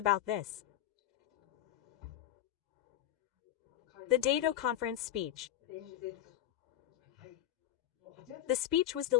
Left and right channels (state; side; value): quieter; right; 12.6 dB